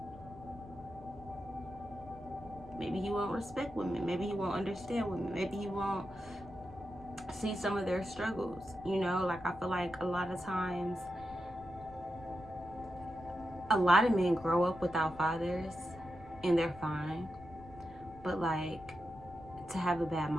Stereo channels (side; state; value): left; noise; rumble, 19 dB below the sound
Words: maybe he won't respect women, maybe he won't understand women, maybe he won't see some of their struggles, you know. Like, I feel like a lot of times, a lot of men grow up without fathers and they're fine, but like, to have a bad